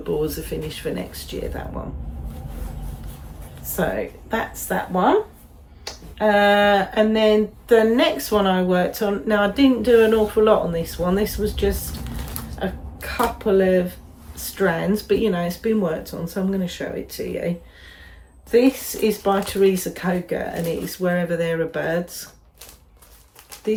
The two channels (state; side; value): identical; both; correlation 1.00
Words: as a finish for next year, that one. So that's that one. And then the next one I worked on, now I didn't do an awful lot on this one. This was just a couple of strands, but you know, it's been worked on, so I'm going to show it to you. This is by Teresa Koga, and it is Wherever There Are Birds.